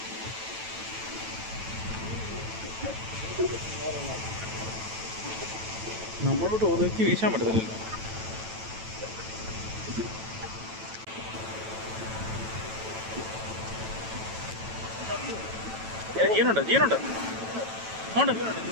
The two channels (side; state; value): left; late; 9.1 ms